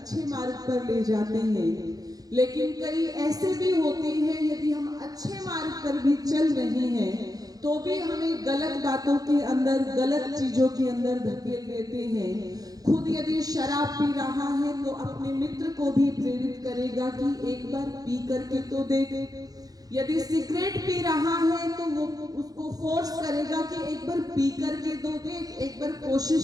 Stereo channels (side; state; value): left; late; 0.18 ms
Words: मार्ग पर ले जाते हैं, लेकिन कई ऐसे भी होते हैं यदि हम अच्छे मार्ग पर भी चल रहे हैं तो भी हमें गलत बातों के अंदर, गलत चीजों के अंदर धकेल देते हैं। खुद यदि शराब पी रहा है तो अपने मित्र को भी प्रेरित करेगा कि एक बार पी करके तो देख, यदि सिगरेट पी रहा है तो वो उसको फोर्स करेगा कि एक बार पी करके तो देख, एक बार